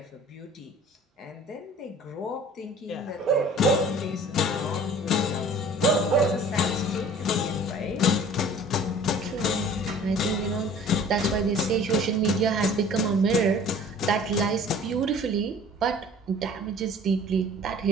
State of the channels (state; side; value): normal; both; correlation 0.47